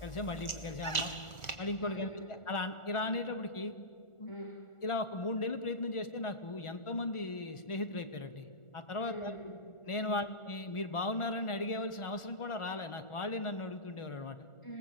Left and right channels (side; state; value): right; late; 1.4 ms